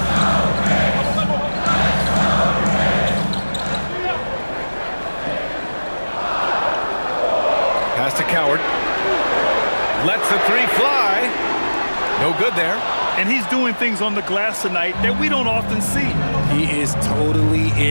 Pass to Coward. Lets the three fly. No good there. And he's doing things on the glass tonight that we don't often see. He is totally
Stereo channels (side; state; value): both; inverted; correlation -1.00